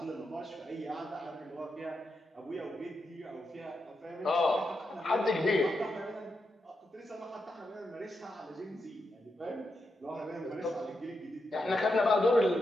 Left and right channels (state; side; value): normal; both; correlation 0.85